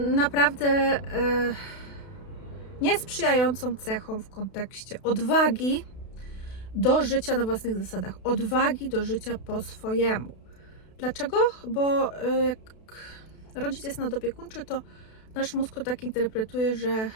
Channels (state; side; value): late; right; 32 ms